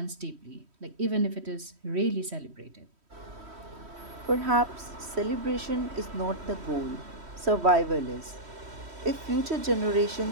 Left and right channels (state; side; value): late; left; 3.1 ms